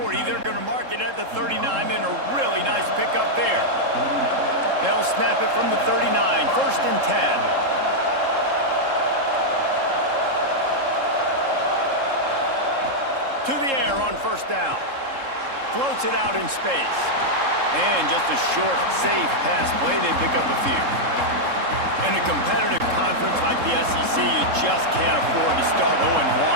They're going to mark it at the 39, and a really nice pickup there. They'll snap it from the 39, 1st and 10. To the air on first down. Floats it out in space. And just a short, safe pass play. They pick up a few. In a competitive conference like the SEC, you just can't afford to start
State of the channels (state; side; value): late; left; 3.7 ms